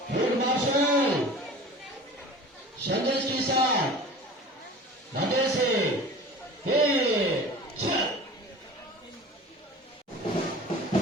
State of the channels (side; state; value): both; normal; correlation 0.39